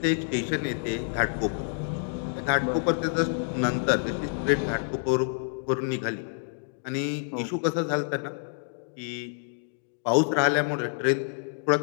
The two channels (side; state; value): right; silent; digital silence